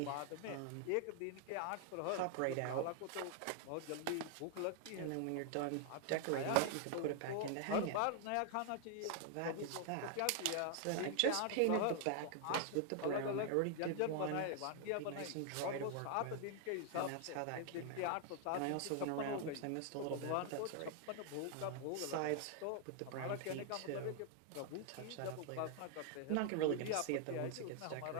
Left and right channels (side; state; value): both; different; correlation 0.00